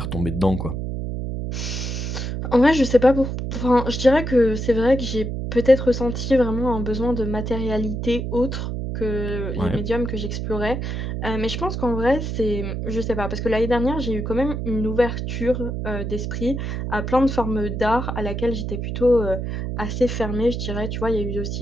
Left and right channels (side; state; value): right; noise; hum, 3 dB below the sound